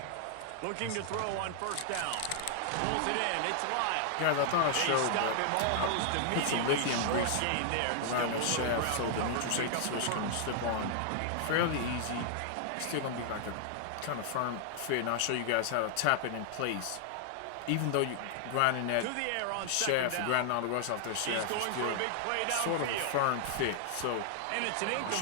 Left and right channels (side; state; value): both; different; correlation 0.00